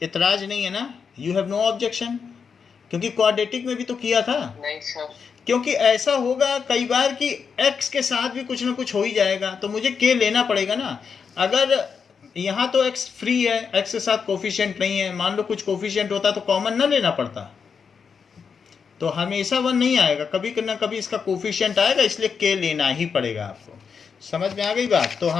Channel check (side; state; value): right; quieter; 6.1 dB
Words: इतराज नहीं है ना? You have no objection? क्योंकि क्वाड्रेटिक में भी तो किया था। नहीं सर। क्योंकि ऐसा होगा कई बार कि x के साथ भी कुछ ना कुछ हो ही जाएगा, तो मुझे k लेना पड़ेगा ना। अगर यहाँ तो x फ्री है, x के साथ कोफिशिएंट नहीं है, मान लो कुछ कोफिशिएंट होता तो कॉमन ना लेना पड़ता, तो हमेशा 1 नहीं आएगा, कभी ना कभी इसका कोफिशिएंट आएगा, इसलिए k लेना ही पड़ेगा आपको। समझ में आ गई बात? तो